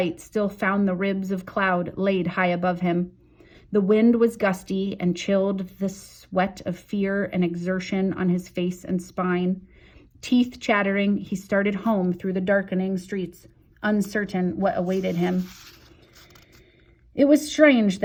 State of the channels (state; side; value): identical; both; correlation 1.00